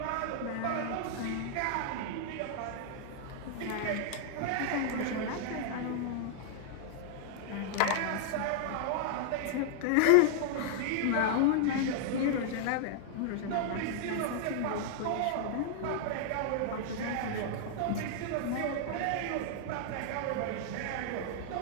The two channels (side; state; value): both; different; correlation -0.01